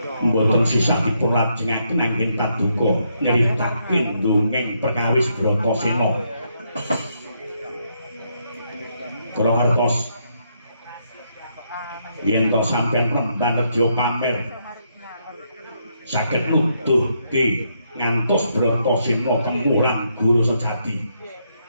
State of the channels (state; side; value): inverted; both; correlation -0.77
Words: mboten sisah dipun lajengaken anggen paduka nyritakaken dongeng perkawis Bratasena kula ngertos yen to sampeyan penemban reja pamer saged nuduhke ngantos Bratasena kemulan guru sejati